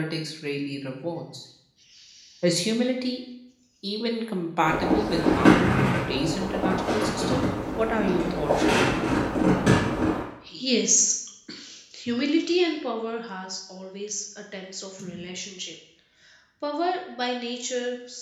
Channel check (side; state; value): both; identical; correlation 1.00